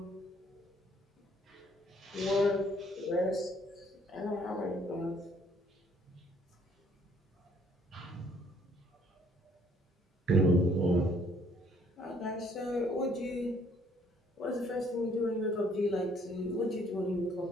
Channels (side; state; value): both; normal; correlation 0.62